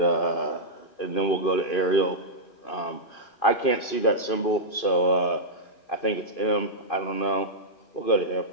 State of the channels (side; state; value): right; late; 2.5 ms